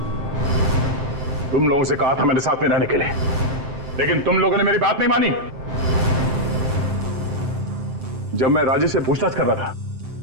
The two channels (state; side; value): late; left; 7.7 ms